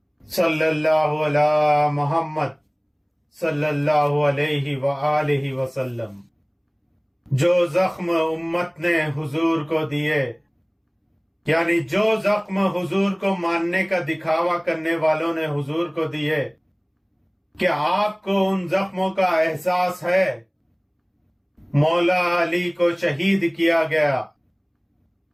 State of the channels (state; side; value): identical; both; correlation 1.00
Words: صلی اللہ علی محمد صلی اللہ علیہ وآلہ وسلم۔ جو زخم امت نے حضور کو دیے، یعنی جو زخم حضور کو ماننے کا دکھاوا کرنے والوں نے حضور کو دیے، کیا آپ کو ان زخموں کا احساس ہے؟ مولا علی کو شہید کیا گیا